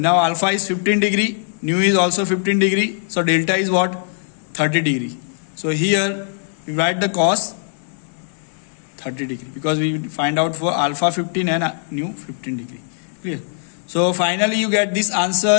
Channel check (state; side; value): silent; right; 55 dB below the other